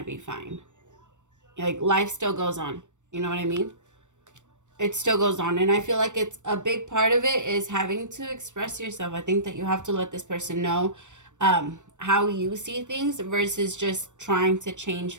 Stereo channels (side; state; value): left; late; 0.85 ms